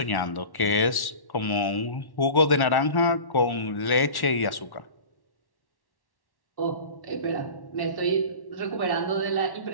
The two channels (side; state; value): right; late; 1.1 ms